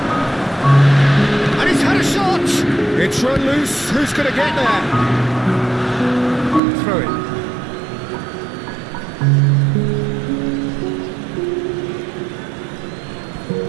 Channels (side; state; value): left; drops out; at 6.6 s